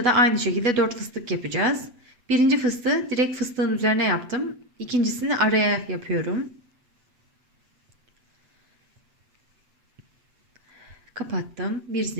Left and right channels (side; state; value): left; late; 7.9 ms